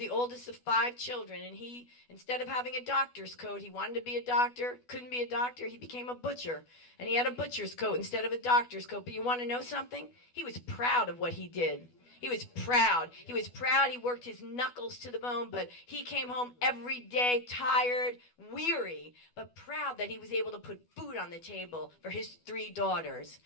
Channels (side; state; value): right; late; 12 ms